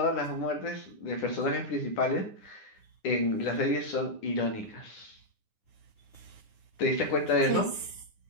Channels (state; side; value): late; right; 9.8 ms